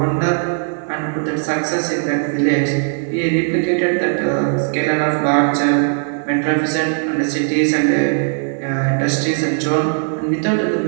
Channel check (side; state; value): left; silent; 61 dB below the other